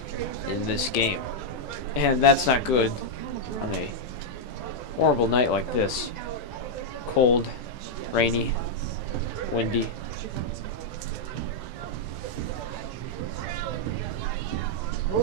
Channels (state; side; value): late; right; 16 ms